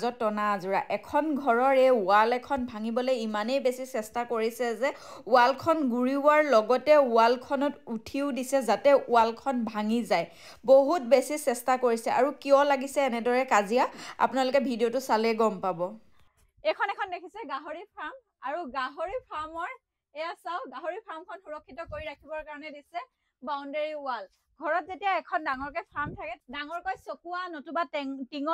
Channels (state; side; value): identical; both; correlation 1.00